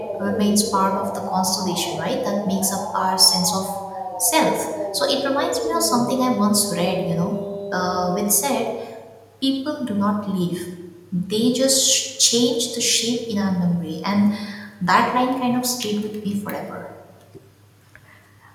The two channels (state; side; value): identical; both; correlation 1.00